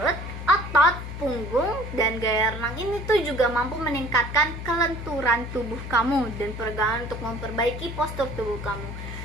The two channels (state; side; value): noise; left; hum, 8 dB below the sound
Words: otot, punggung, dan gaya renang ini tuh juga mampu meningkatkan kelenturan tubuh kamu dan peregangan untuk memperbaiki postur tubuh kamu.